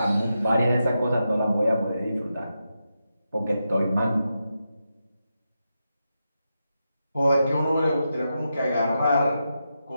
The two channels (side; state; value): both; inverted; correlation -0.87